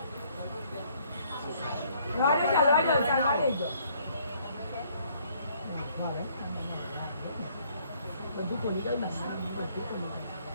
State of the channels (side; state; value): both; inverted; correlation -0.64